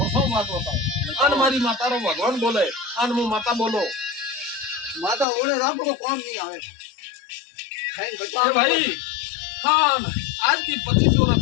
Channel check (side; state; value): right; drops out; at 5.2 s